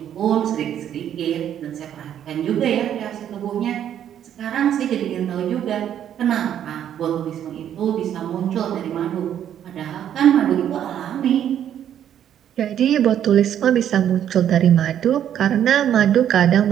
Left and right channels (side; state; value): left; quieter; 10.1 dB